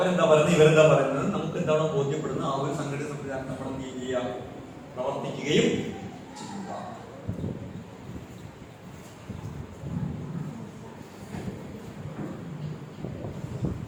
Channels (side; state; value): both; identical; correlation 1.00